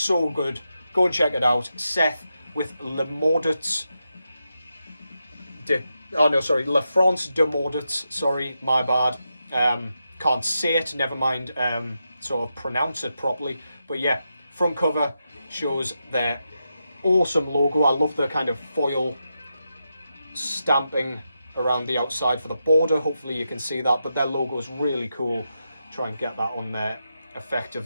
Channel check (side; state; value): both; inverted; correlation -0.87